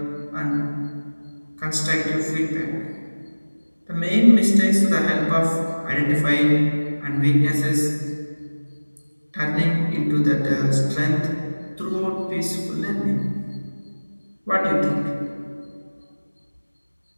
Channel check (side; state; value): both; inverted; correlation -1.00